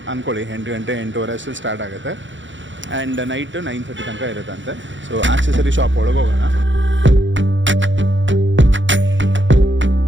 ಅಂದ್ಕೊಳ್ಳಿ, 8 ಗಂಟೆ 8:30 ಅಷ್ಟು ಸ್ಟಾರ್ಟ್ ಆಗುತ್ತೆ ಆ್ಯಂಡ್ ನೈಟು 9:30 ತನಕ ಇರುತ್ತಂತೆ. ಸೊ ಆಕ್ಸೆಸರಿ ಶಾಪ್ ಒಳಗೆ ಹೋಗೋಣ.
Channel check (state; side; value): late; left; 0.55 ms